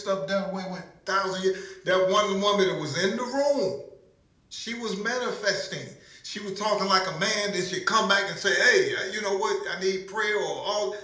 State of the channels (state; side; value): identical; both; correlation 1.00